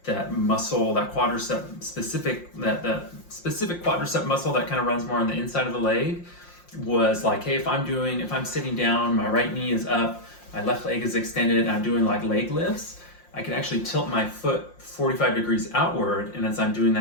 muscle, that quadricep specific, that specific quadricep muscle that kind of runs more on the inside of the leg, was like, hey, if I'm sitting down, my right knee is up, my left leg is extended, I'm doing like leg lifts, I can actually tilt my foot 45 degrees outward, and as I'm doing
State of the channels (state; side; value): late; right; 5.7 ms